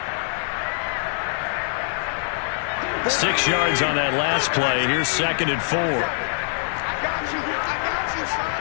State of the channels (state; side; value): silent; right; digital silence